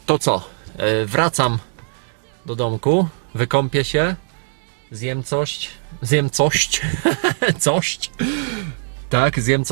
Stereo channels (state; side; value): silent; left; digital silence